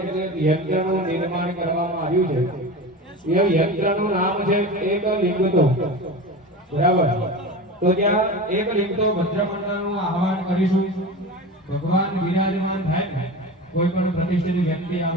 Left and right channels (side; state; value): both; normal; correlation 0.29